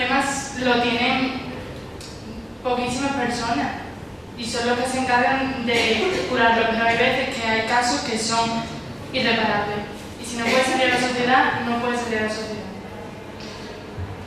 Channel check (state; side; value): identical; both; correlation 1.00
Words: lo tienen poquísimas personas y son los que se encargan de curarlo, pero hay veces que hay casos que son irreparables y si no puede salir a la sociedad, no puede salir a la sociedad.